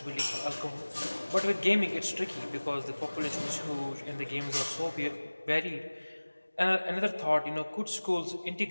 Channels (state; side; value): inverted; both; correlation -1.00